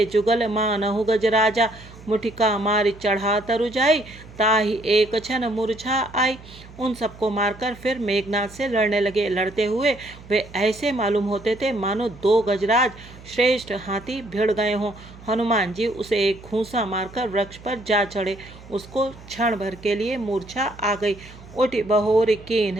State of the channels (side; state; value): right; noise; hum, 19 dB below the sound